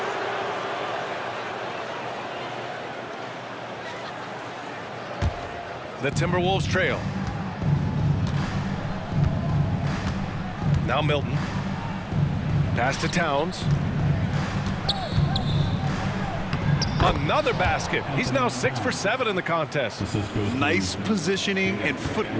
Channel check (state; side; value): identical; both; correlation 1.00